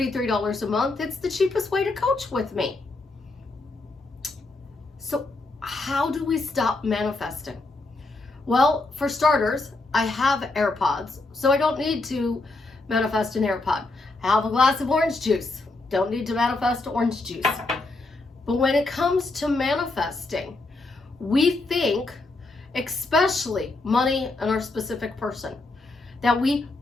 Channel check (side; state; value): right; quieter; 3.2 dB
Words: a month, it's the cheapest way to coach with me. So how do we stop manifesting? Well, for starters, I have AirPods, so I don't need to manifest an AirPod. I have a glass of orange juice. Don't need to manifest orange juice. But when it comes to manifesting, we think, especially money and our specific person, that we